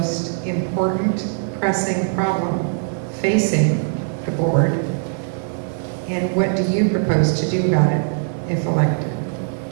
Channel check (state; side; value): silent; left; digital silence